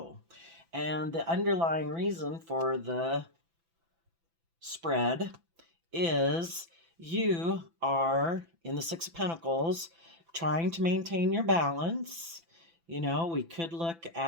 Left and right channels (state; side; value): late; left; 6.0 ms